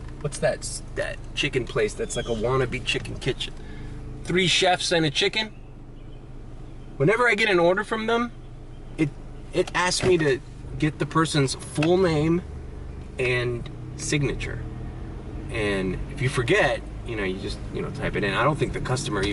what's that chicken place that's like a wannabe chicken kitchen? 3 chefs and a chicken. Whenever I get an order from them, it asks me to get the person's full name and signature. And if you forget, you just, type it in. I don't think the customer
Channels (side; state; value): both; identical; correlation 1.00